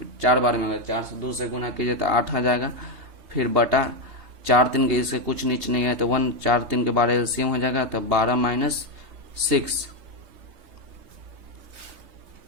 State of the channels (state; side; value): late; left; 3.2 ms